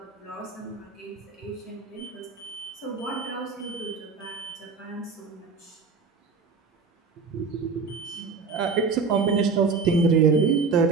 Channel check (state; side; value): quieter; left; 4.8 dB